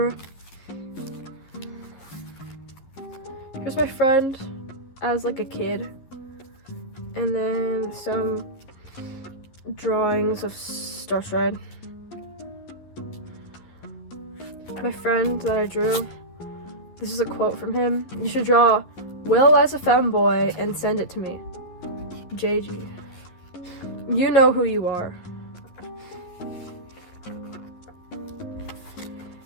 Here's my friend as like a kid, and then some drawings of Starstride. My friend that I drew, this is a quote from him: "You should draw Will as a femboy and send it to me. JG. You know who you are."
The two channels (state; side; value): late; right; 11 ms